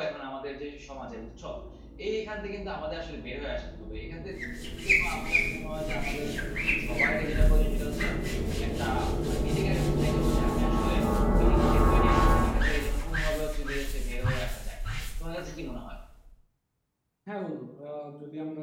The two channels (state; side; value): identical; both; correlation 1.00